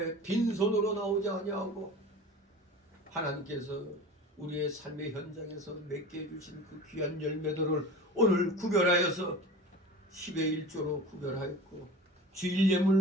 빈손으로 나오지 아니하고 하나님께서 우리의 삶의 현장에서 맺게 해주신 그 귀한 열매들을 오늘 구별하여서 10의 1조로 구별하였고 주일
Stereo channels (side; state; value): both; normal; correlation 0.36